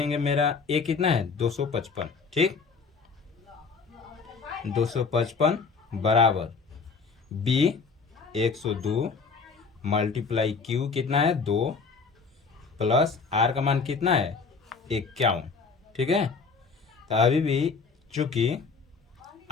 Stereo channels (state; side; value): quieter; right; 4.9 dB